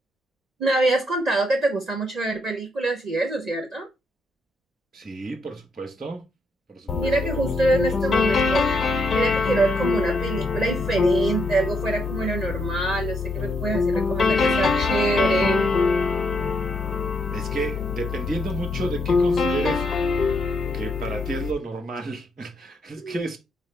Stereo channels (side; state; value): both; normal; correlation 0.76